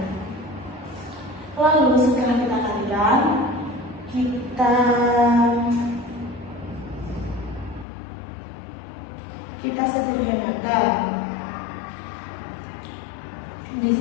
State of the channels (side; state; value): right; drops out; at 7.9 s